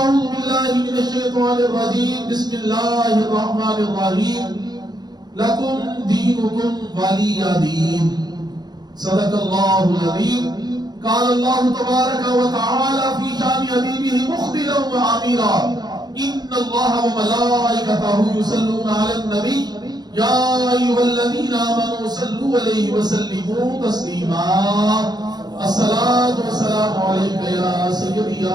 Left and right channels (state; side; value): late; left; 0.20 ms